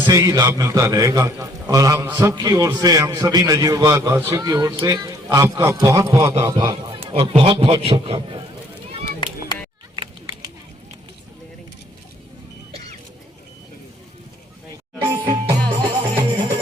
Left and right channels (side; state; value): both; normal; correlation 0.62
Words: ही लाभ मिलता रहेगा। और हम सब की ओर से, हम सभी नजीबाबाद वासियों की ओर से आपका बहुत बहुत आभार और बहुत बहुत शुभकामनाएं।